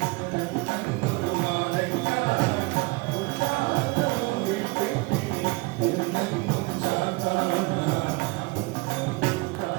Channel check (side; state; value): left; quieter; 24.4 dB